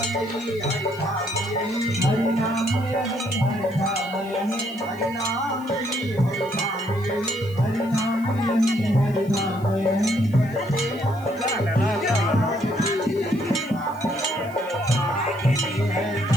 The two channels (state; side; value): noise; left; hiss, 24 dB below the sound